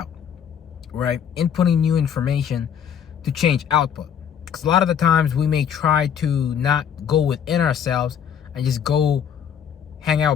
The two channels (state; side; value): quieter; right; 8.3 dB